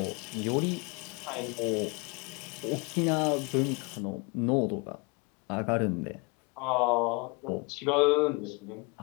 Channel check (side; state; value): right; quieter; 29.2 dB